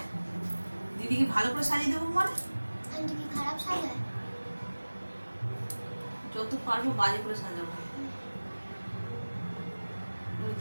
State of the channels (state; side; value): inverted; both; correlation -1.00